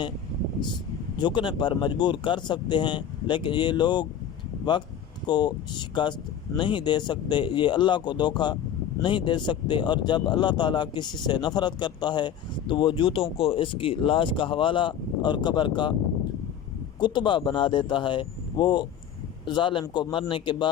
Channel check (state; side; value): quieter; right; 8.9 dB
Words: جھکنے پر مجبور کر سکتے ہیں، لیکن یہ لوگ وقت کو شکست نہیں دے سکتے، یہ اللہ کو دھوکہ نہیں دے سکتے۔ اور جب اللہ تعالیٰ کسی سے نفرت کرتا ہے تو وہ جوتوں کو اس کی لاش کا حوالہ اور قبر کا کتبہ بنا دیتا ہے، وہ ظالم کو مرنے کے